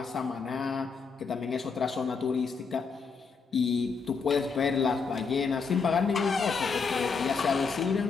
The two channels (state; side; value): quieter; right; 5.1 dB